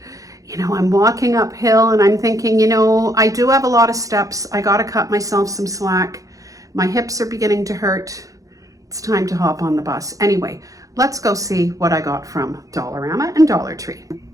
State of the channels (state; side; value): late; left; 0.16 ms